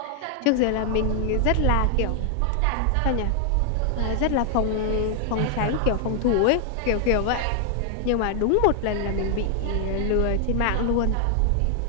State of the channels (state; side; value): different; both; correlation 0.00